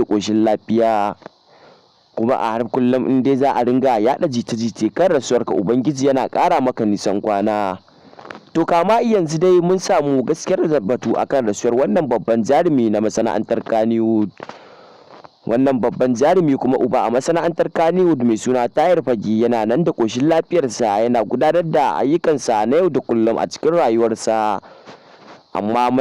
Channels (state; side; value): identical; both; correlation 1.00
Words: ƙoshin lafiya. Kuma a har kullum in dai za a ringa yaɗa jita-jita kan rasuwarka, Ubangiji yana ƙara maka nisan kwana. To kama yanzu dai mun samu gaskiyar batu akan rasuwar wannan babban jarumi na masana'antar Kannywood. Wannan babban jarumi kuma uba a masana'antar Kannywood mai suna Tahir Fage yana nan da ƙoshin lafiyarsa, yana gudanar da ayyukansa na yau da kullum a cikin rayuwarsa. Amma